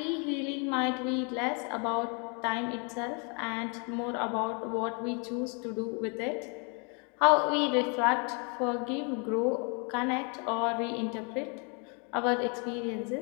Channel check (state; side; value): quieter; right; 35.6 dB